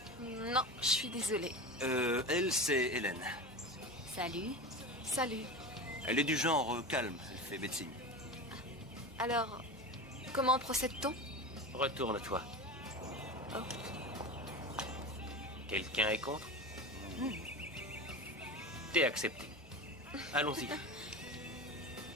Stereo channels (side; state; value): both; normal; correlation 0.26